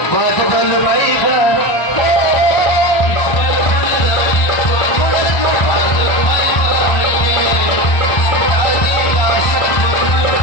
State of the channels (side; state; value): right; late; 1.1 ms